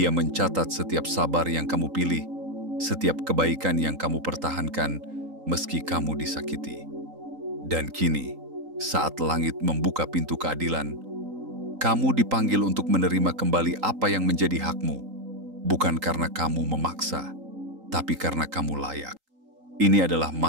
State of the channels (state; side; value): late; left; 3.8 ms